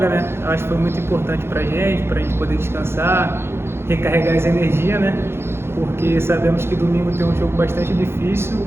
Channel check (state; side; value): late; left; 0.12 ms